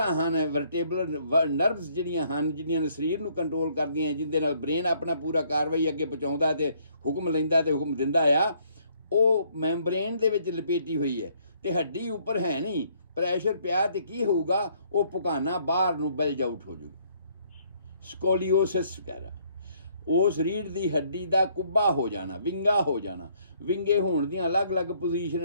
ਹਨ, ਵਰਟੇਬਲਰ ਨਰਵਸ ਜਿਹੜੀਆਂ ਹਨ, ਜਿਹੜੀਆਂ ਸਰੀਰ ਨੂੰ ਕੰਟਰੋਲ ਕਰਦੀਆਂ, ਜਿਹਦੇ ਨਾਲ ਬ੍ਰੇਨ ਆਪਣਾ ਪੂਰਾ ਕਾਰਵਾਈ ਅੱਗੇ ਪਹੁੰਚਾਉਂਦਾ ਤੇ ਹੁਕਮ ਲੈਂਦਾ ਤੇ ਹੁਕਮ ਦਿੰਦਾ ਆ, ਉਹ ਮੈਂਬਰੇਨ ਦੇ ਵਿੱਚ ਲਪੇਟੀ ਹੋਈ ਹੈ ਤੇ ਹੱਡੀ ਉੱਪਰ ਹੈ ਨਹੀਂ। ਪ੍ਰੈਸ਼ਰ ਪਿਆ ਤੇ ਕੀ ਹੋਊਗਾ? ਉਹ ਪੁਕਾਨਾ ਬਾਹਰ ਨੂੰ ਬਲਜ ਆਊਟ ਹੋ ਜਾਊਗਾ, ਸਕੋਲੀਓਸਿਸ ਵਗੈਰਾ। ਉਸ ਰੀੜ੍ਹ ਦੀ ਹੱਡੀ ਦਾ ਕੁੱਬਾ ਹੋ ਜਾਣਾ, ਵਿੰਗਾ ਹੋ ਜਾਣਾ। ਵਿੰਗੇ ਹੋਣ ਦੀਆਂ ਅਲੱਗ-ਅਲੱਗ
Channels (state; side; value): inverted; both; correlation -0.65